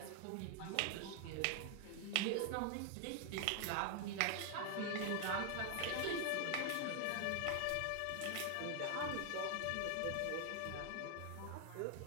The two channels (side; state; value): both; different; correlation 0.00